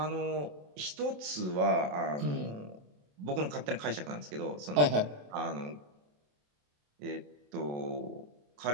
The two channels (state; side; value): late; left; 27 ms